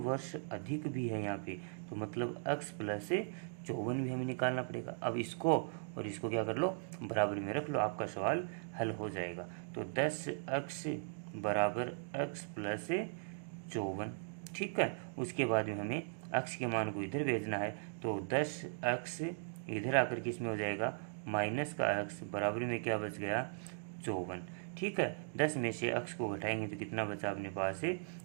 अधिक भी है यहाँ पे, तो मतलब x प्लस 54 भी हमें निकालना पड़ेगा। अब इसको और इसको क्या कर लो, बराबर में रख लो, आपका सवाल हल हो जाएगा। तो 10x बराबर x प्लस 54, ठीक है। उसके बाद में हमें x के मान को इधर भेजना है, तो 10x इधर आकर किस में हो जाएगा, माइनस का x बराबर में क्या बच गया, 54, ठीक है। 10 में से x को घटाएंगे तो कितना बचा अपने पास है,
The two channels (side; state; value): left; silent; digital silence